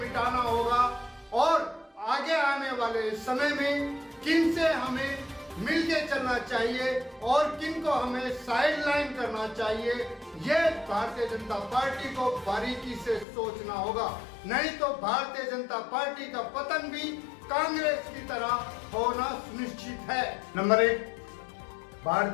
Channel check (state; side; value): drops out; right; at 13.2 s